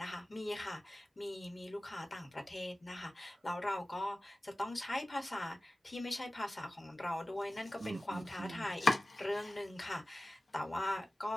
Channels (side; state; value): both; normal; correlation 0.96